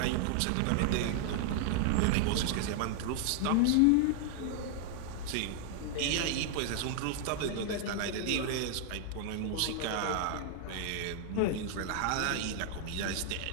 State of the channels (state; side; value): different; both; correlation 0.00